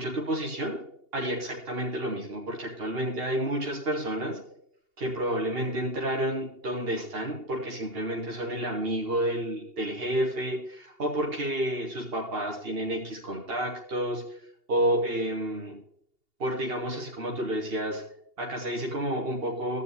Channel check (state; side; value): late; left; 2.8 ms